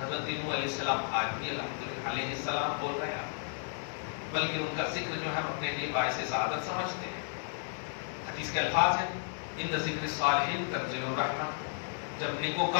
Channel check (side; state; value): right; silent; digital silence